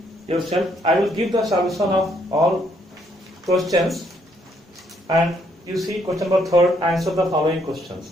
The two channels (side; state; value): both; normal; correlation 0.70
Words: yourself. I will give the solution of all questions, and you see question number 3, answer the following